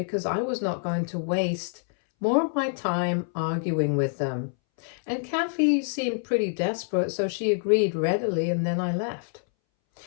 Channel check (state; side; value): silent; right; 61 dB below the other